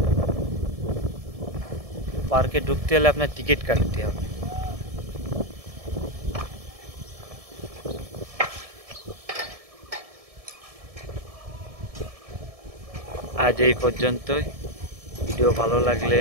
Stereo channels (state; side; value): late; left; 1.7 ms